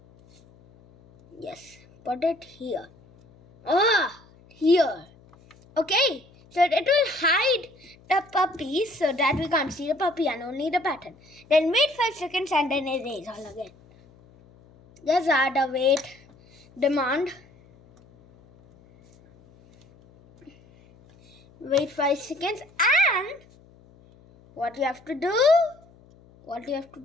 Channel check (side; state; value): left; noise; hum, 27 dB below the sound